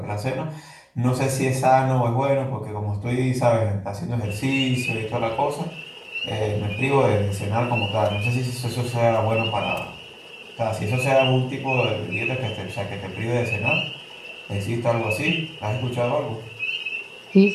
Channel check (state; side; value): identical; both; correlation 1.00